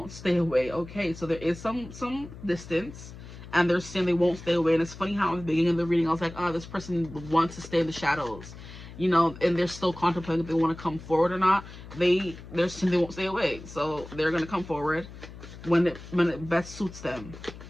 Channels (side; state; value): left; noise; hum, 15 dB below the sound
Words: stay away. Okay, so there is some distance, and they're saying they won't stay away. And it's funny how in the beginning of the reading I was like, oh, this person wants to stay in the shadows, you know, and they're still contemplating if they want to come forward or not. They're saying they won't stay away, so they're gonna come forward when it best suits them